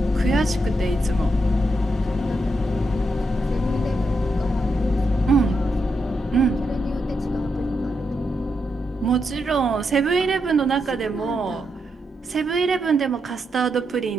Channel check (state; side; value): normal; both; correlation 0.83